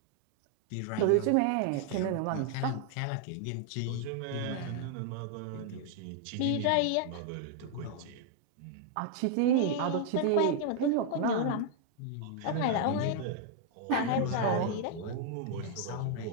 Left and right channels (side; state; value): both; different; correlation 0.00